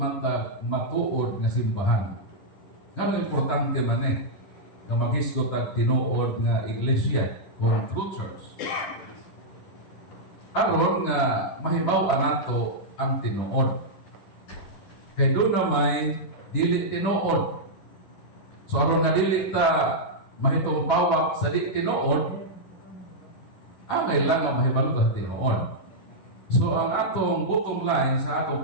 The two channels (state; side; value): late; right; 10 ms